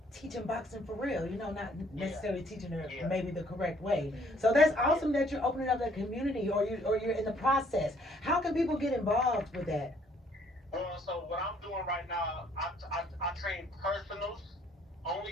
teaching boxing for real, you know, not necessarily teaching it maybe the correct way. So that's awesome that you're opening up that community, or you're in the process. How can people get involved with that? So what I'm doing right now, I train personals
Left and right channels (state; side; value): normal; both; correlation 0.63